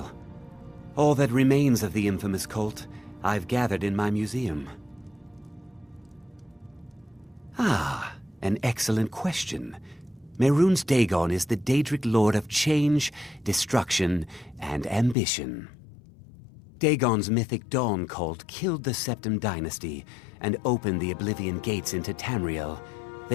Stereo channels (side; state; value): right; drops out; at 15.2 s